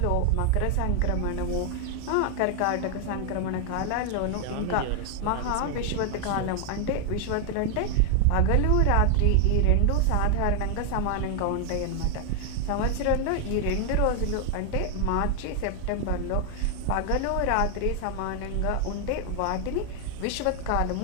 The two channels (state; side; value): different; both; correlation 0.00